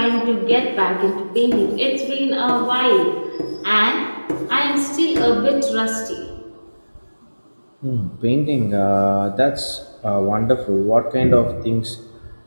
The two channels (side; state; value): both; inverted; correlation -1.00